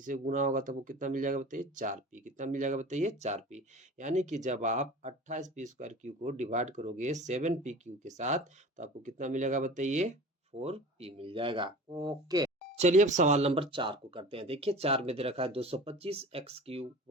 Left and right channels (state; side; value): normal; both; correlation 0.38